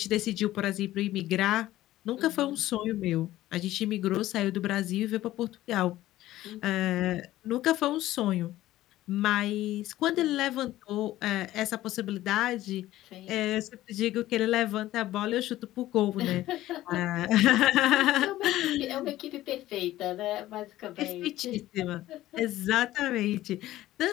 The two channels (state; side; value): quieter; right; 15.2 dB